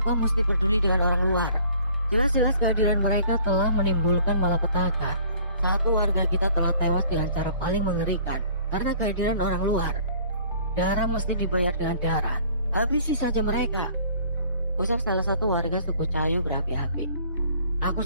mesti peduli dengan orang luar? Jelas-jelas kehadiran mereka telah menimbulkan malapetaka. Satu warga kita telah tewas dengan cara paling mengerikan karena kehadiran orang luar. Darah mesti dibayar dengan darah. Habisi saja mereka, ucap salah satu warga suku Cahayu berapi-api. Aku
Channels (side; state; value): both; inverted; correlation -0.54